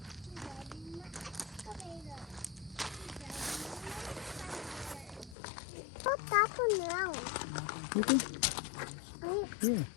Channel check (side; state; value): right; drops out; at 5.4 s